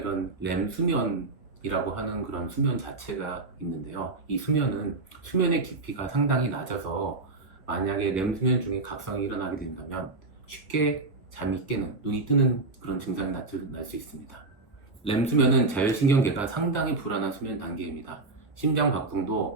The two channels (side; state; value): left; quieter; 3.4 dB